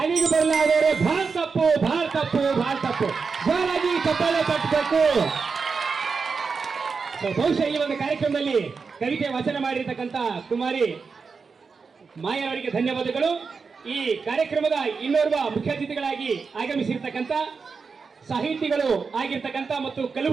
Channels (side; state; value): left; quieter; 5.1 dB